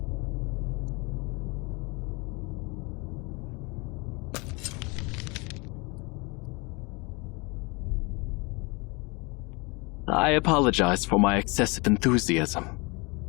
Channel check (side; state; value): right; quieter; 28.2 dB